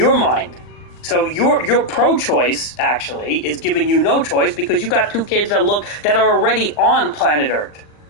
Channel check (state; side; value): late; right; 39 ms